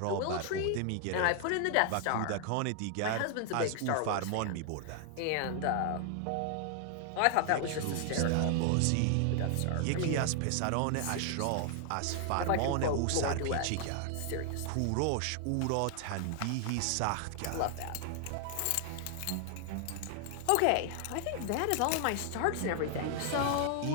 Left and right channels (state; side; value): different; both; correlation 0.00